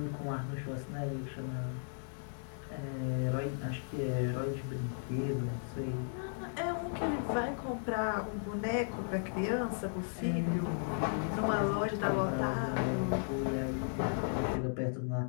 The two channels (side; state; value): right; silent; digital silence